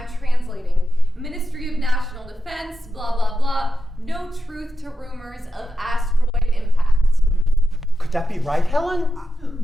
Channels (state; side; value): normal; both; correlation 0.89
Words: translating. Ministry of National Defense, blah, blah, blah. No truth to rumors of asteroid impact. Could that be right,